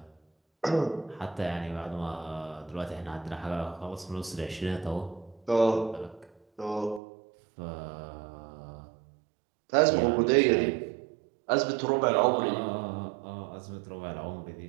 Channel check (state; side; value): drops out; left; at 7.0 s